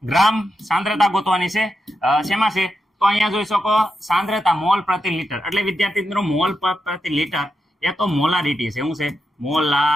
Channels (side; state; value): both; normal; correlation 0.86